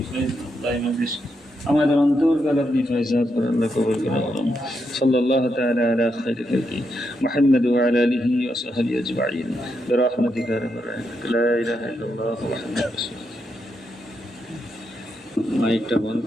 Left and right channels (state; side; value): normal; both; correlation 0.82